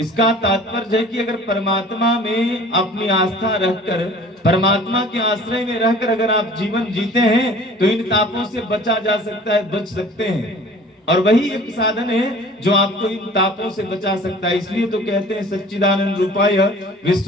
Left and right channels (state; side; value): normal; both; correlation 0.47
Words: तात्पर्य है कि अगर परमात्मा में अपनी आस्था रखकर, परमात्मा के आश्रय में रहकर अगर आप जीवन जीते हैं तो इन तापों से बचा जा सकता है, बच सकते हैं। और वही एक साधन है जो आपको इन तापों से बचा सकता है। इसलिए तो कहते हैं सच्चिदानंद रूपाय